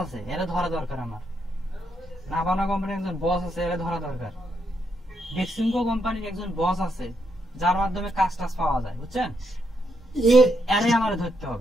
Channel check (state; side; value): normal; both; correlation 0.79